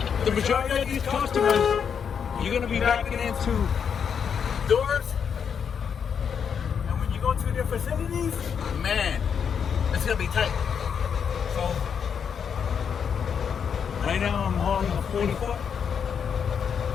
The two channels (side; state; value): right; quieter; 7.2 dB